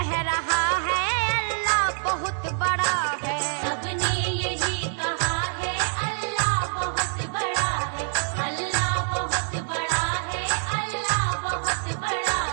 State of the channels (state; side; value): silent; left; 61 dB below the other